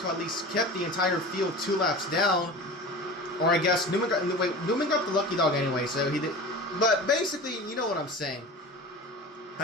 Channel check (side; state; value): both; normal; correlation 0.35